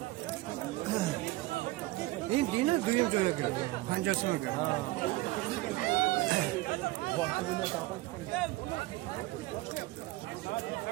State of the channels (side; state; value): left; quieter; 19.3 dB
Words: İn dine duyum joya göre. Pancasına göre.